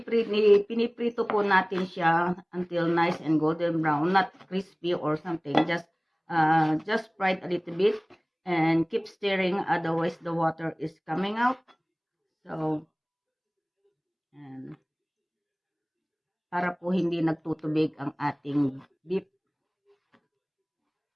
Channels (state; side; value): identical; both; correlation 1.00